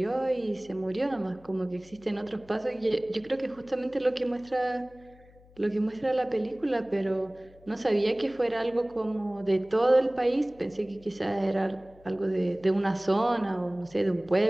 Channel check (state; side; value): noise; left; hum, 25 dB below the sound